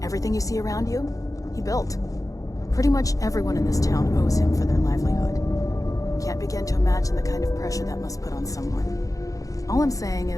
Everything you see around you, he built. Pretty much everyone in this town owes him for their livelihood. Can't begin to imagine the kind of pressure that must put on someone. All I'm saying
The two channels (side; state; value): right; late; 0.16 ms